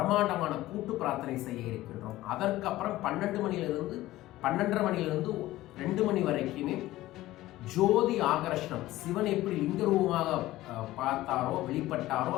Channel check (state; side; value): quieter; right; 16.4 dB